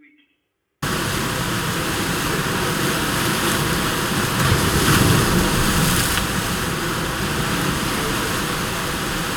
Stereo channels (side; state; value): both; identical; correlation 1.00